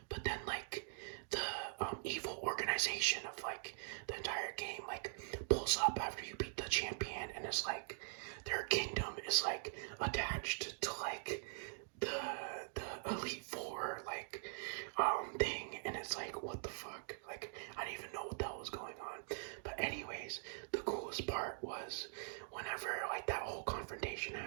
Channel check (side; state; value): left; silent; digital silence